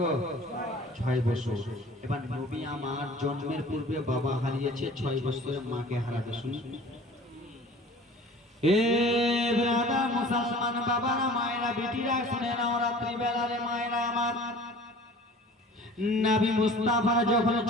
6 বছর। এবার নবী আমার জন্মের পূর্বে বাবা হারিয়েছে, 6 বছরে মাকে হারাতে শুনি। এ ব্রাদার মুসলমান বাবারা, মায়েরা, বেটিরা শুনে নাও, রাত্রি বেলারে মায়েরা আমার, নবী মুস্তাফার যখন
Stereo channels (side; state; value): both; normal; correlation 0.45